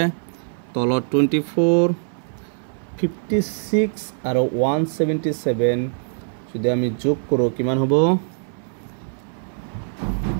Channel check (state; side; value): silent; left; 64 dB below the other